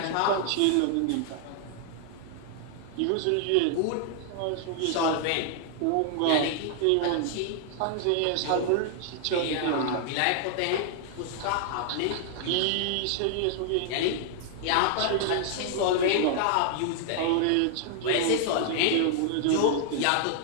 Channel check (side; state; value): both; different; correlation 0.00